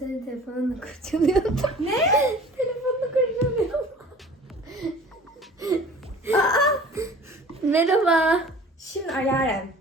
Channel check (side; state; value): both; normal; correlation 0.45